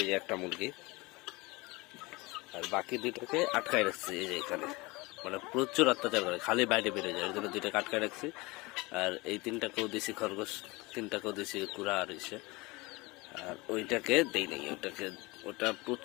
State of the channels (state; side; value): quieter; right; 23.7 dB